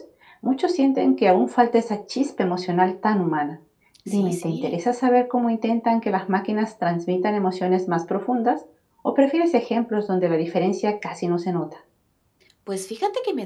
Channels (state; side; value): identical; both; correlation 1.00